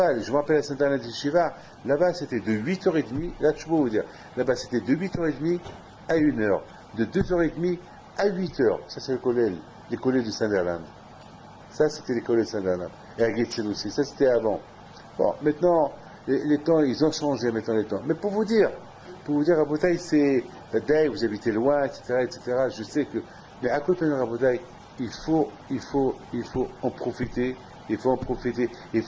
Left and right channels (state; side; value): identical; both; correlation 1.00